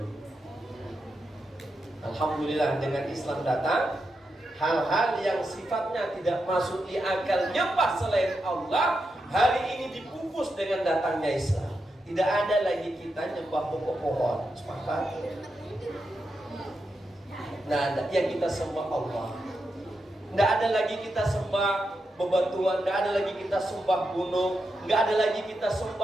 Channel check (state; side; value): normal; both; correlation 0.86